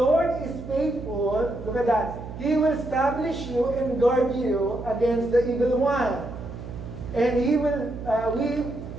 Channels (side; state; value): right; noise; hum, 11 dB below the sound